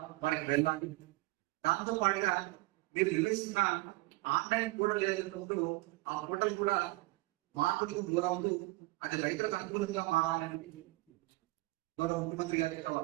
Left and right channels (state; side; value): quieter; left; 21.9 dB